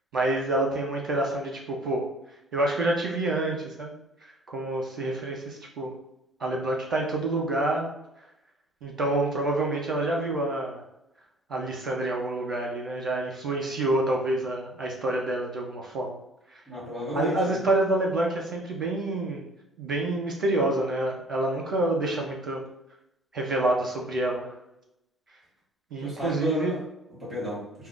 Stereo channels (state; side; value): normal; both; correlation 0.52